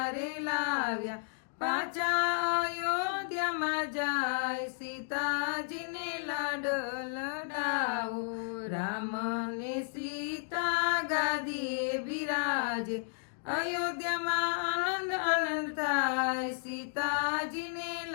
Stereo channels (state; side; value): silent; right; digital silence